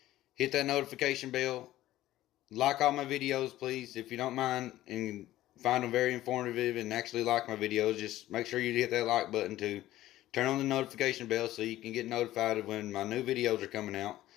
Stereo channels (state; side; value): quieter; right; 14.9 dB